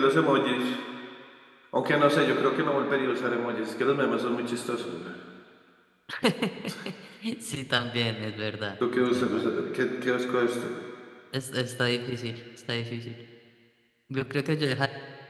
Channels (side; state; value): both; identical; correlation 1.00